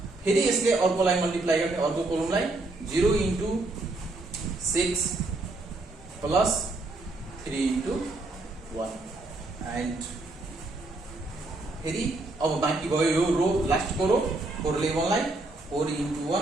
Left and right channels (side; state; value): left; quieter; 3.0 dB